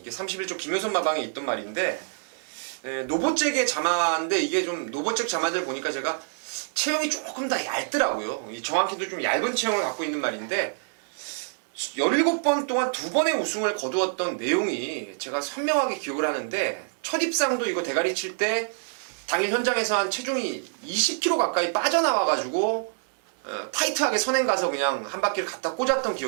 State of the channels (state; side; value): silent; left; digital silence